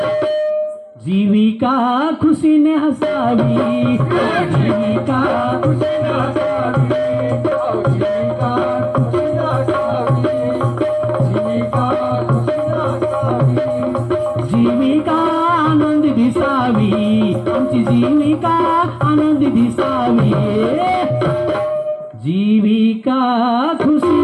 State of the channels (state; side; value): identical; both; correlation 1.00